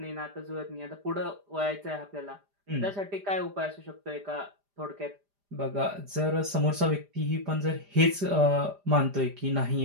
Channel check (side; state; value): left; late; 5.0 ms